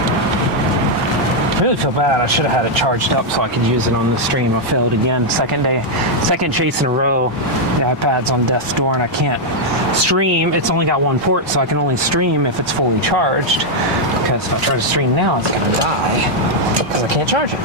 I really feel bad. I should have had it charged up so I could use it on the stream. I failed again. Second chase in a row. The iPad's on death's door and I can't stream. It's only got one port, so I can only stream if it's fully charged. Because if I try to stream now, it's gonna die. Because I can't charge it.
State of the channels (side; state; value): both; normal; correlation -0.02